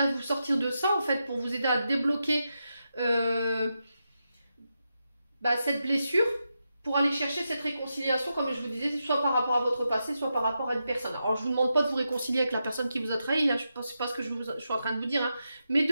vous sortir de ça, en fait, pour vous aider à débloquer cette blessure, pour aller chercher cette réconciliation, comme je vous disais, soit par rapport à votre passé, soit par rapport à une personne. Alors, je vous demande pas de vous réconcilier avec la personne qui vous a trahi, hein, c'est pas ce que je suis en train de vous dire, hein, mais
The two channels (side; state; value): both; inverted; correlation -0.87